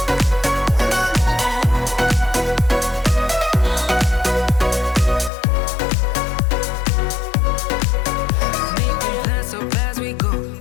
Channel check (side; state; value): right; drops out; at 5.3 s